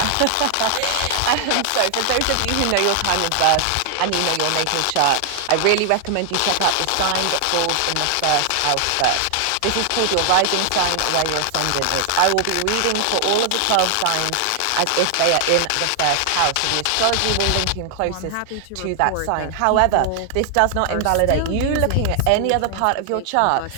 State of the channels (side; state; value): both; different; correlation 0.00